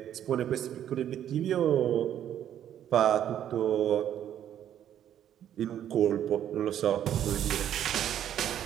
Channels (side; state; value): left; quieter; 10.5 dB